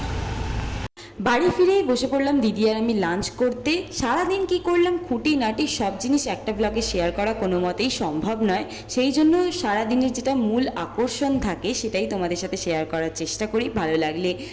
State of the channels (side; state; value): both; identical; correlation 1.00